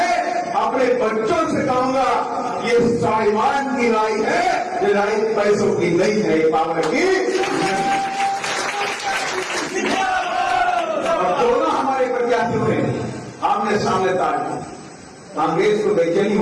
अपने बच्चों से कहूंगा ये स्वाभिमान की लड़ाई है, ये लड़ाई पैसों की नहीं है, ये पावर की। और दोनों हमारे प्रत्याशी हुए आमने सामने ताड़, कांग्रेस को बेचैनी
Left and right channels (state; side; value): identical; both; correlation 1.00